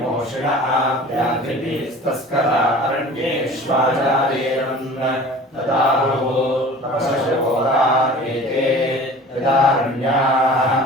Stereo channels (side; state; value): both; normal; correlation 0.42